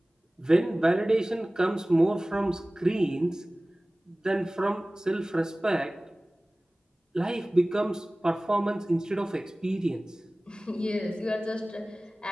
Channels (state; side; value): normal; both; correlation 0.98